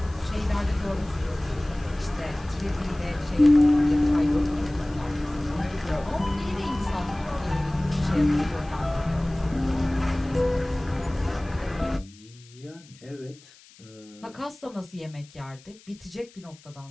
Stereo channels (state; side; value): noise; left; hiss, 25 dB below the sound